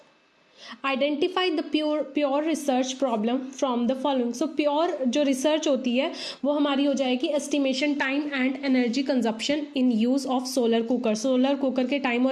identify the pure research problem from the following. So pure जो रिसर्च होती है वो हमारी हो जाएगी estimation time and energy consumption in use of solar cooker. Solar cooker के टाइम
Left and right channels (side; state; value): both; identical; correlation 1.00